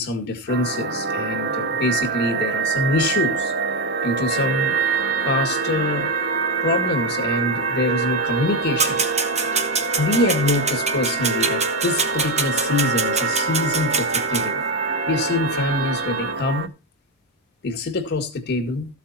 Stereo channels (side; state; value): both; normal; correlation 0.09